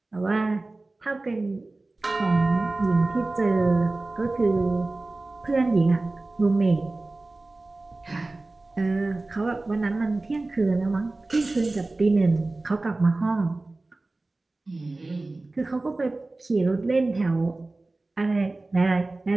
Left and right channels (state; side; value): quieter; left; 3.1 dB